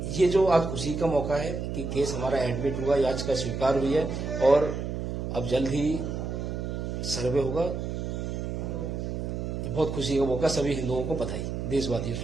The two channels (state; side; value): noise; right; hum, 4 dB below the sound